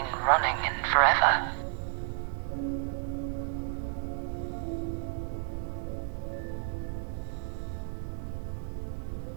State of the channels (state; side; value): silent; left; digital silence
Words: running in forever.